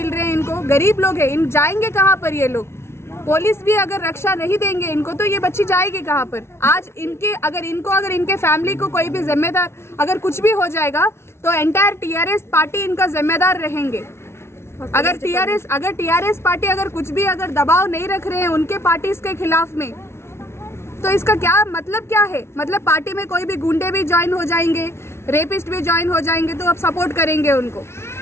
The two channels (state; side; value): late; right; 0.12 ms